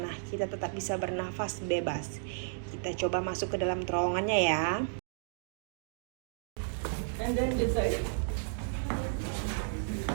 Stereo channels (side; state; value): left; silent; digital silence